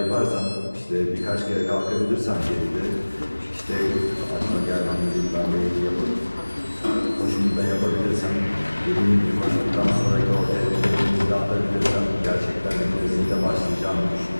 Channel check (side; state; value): both; inverted; correlation -1.00